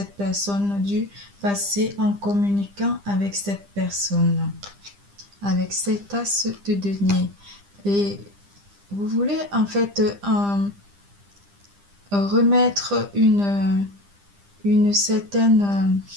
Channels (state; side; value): late; left; 10 ms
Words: personne du passé en communiquant avec cette personne, avec cet as de denier. Et vous voulez en fait remettre une certaine,